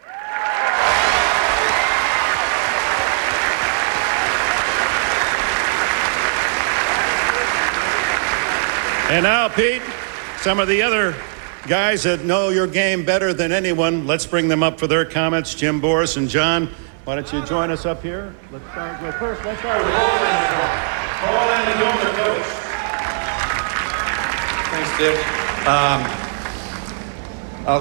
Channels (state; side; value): silent; left; digital silence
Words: And now, Pete, some of the other guys that know your game better than anyone, let's bring them up for their comments. Jim, Boris, and John, why don't you join us up here? Let's start with Paul Annacone, the coach. Thanks, Dick.